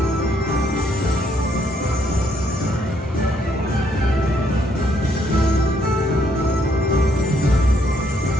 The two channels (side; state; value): both; normal; correlation 0.71